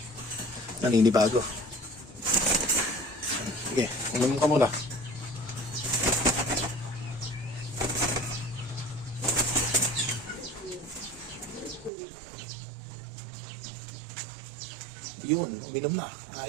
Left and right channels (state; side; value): drops out; left; at 11.9 s